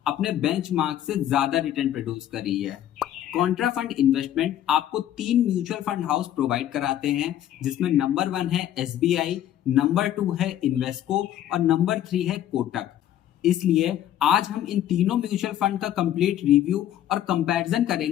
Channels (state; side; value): quieter; right; 11.7 dB